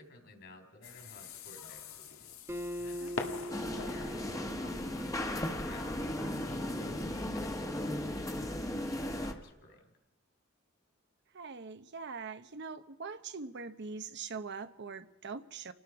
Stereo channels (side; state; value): both; normal; correlation 0.59